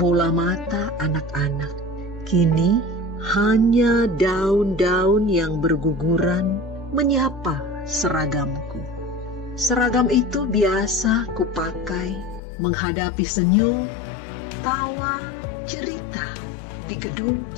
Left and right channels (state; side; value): drops out; right; at 12.4 s